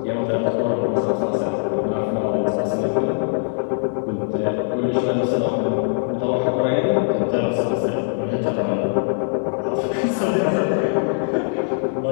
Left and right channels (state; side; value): silent; right; digital silence